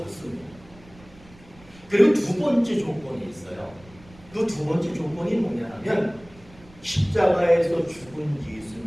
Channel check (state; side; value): noise; right; rumble, 24 dB below the sound